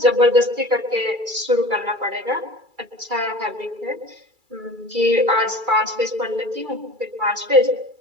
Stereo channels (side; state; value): left; late; 2.3 ms